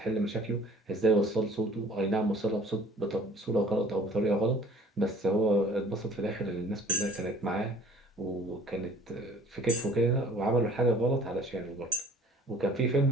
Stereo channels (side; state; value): both; normal; correlation 0.50